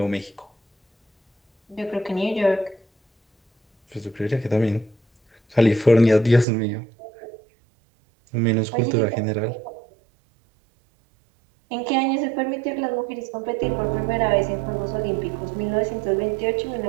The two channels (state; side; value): drops out; left; at 6.5 s